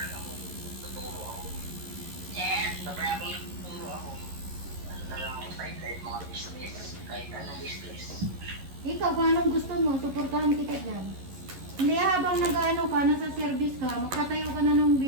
ako, tuturo ako. Yes! Sabay ako nagtuturo ako. Ano na lang ako sideline mga business, kahit anong business. Ikaw, kung anong gusto mo, suportahan kita dyan. Hindi habang nag-ano ka, nasa service ka, magtatayo ka na ng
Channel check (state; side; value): late; left; 11 ms